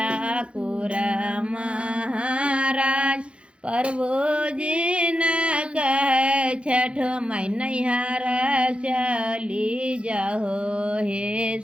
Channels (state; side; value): late; left; 0.058 ms